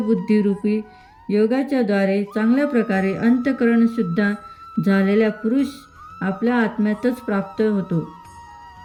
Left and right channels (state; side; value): identical; both; correlation 1.00